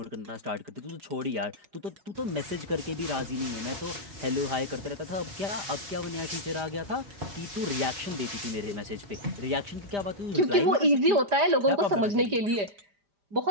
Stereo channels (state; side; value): late; left; 5.1 ms